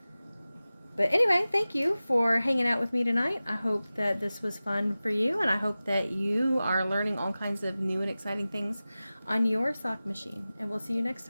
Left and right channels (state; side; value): inverted; both; correlation -0.96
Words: But anyway, thank you for hanging out with me tonight. I hope that this was fun for you, and I hope that you are learning all kinds of new and exciting things on your sock machine. And we'll see you next